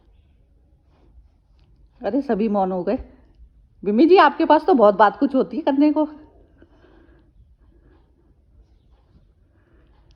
अरे सभी मौन हो गए। बिमी जी, आपके पास तो बहुत बात कुछ होती है करने को।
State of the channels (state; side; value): identical; both; correlation 1.00